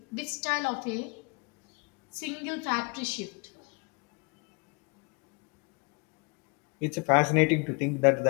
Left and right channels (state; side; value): quieter; right; 31.3 dB